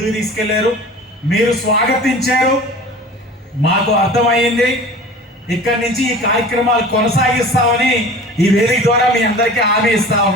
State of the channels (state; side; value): normal; both; correlation 0.40